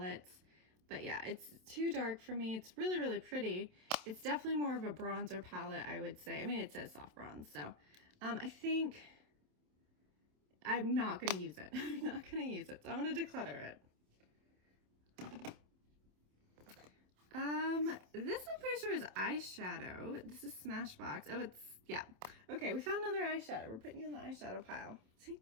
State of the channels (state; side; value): late; left; 27 ms